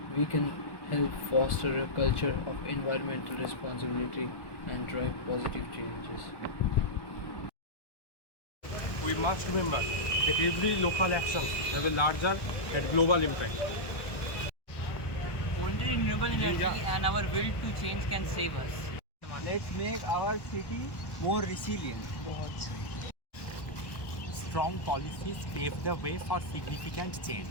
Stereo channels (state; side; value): late; right; 1.1 ms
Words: we can help foster a culture of environmental responsibility and drive positive changes. We must remember that every local action has a larger and global impact. Only renewable energy and our will to change can save us. Let's make our city more resilient. Strong policies pave the way for significant change.